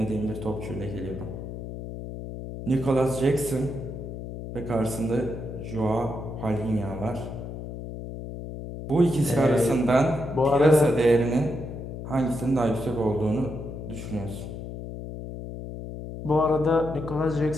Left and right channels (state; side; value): noise; left; hum, 9 dB below the sound